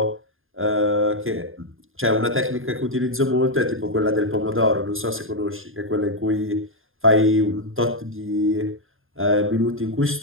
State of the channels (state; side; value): late; left; 0.59 ms